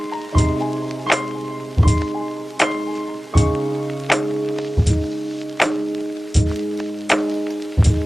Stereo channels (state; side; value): normal; both; correlation 0.96